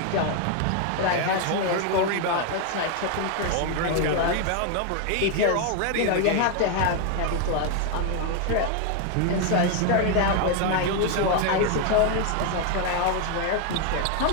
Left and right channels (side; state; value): both; different; correlation 0.01